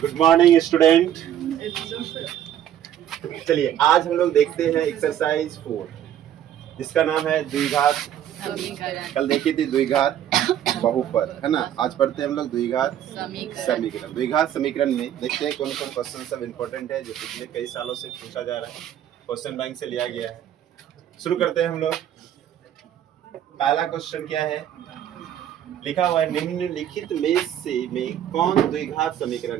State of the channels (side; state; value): left; quieter; 10.7 dB